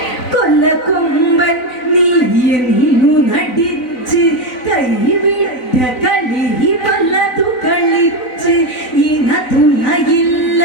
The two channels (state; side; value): late; right; 4.0 ms